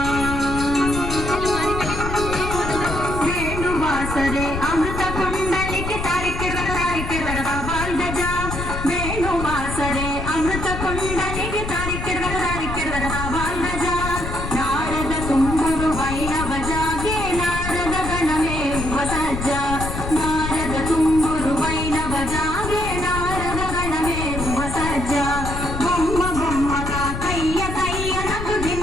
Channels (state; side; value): noise; left; rumble, 5 dB below the sound